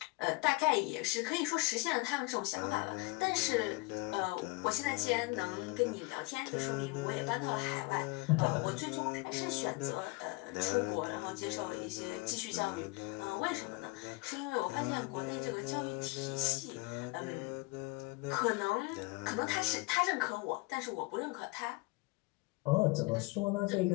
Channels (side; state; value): right; quieter; 25.0 dB